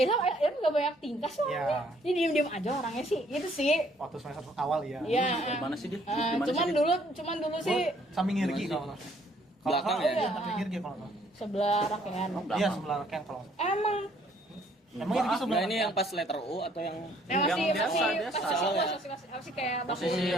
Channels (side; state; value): both; normal; correlation 0.63